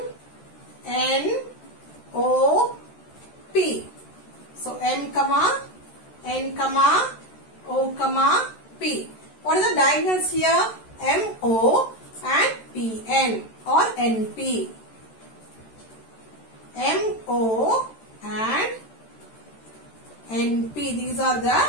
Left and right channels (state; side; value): late; right; 13 ms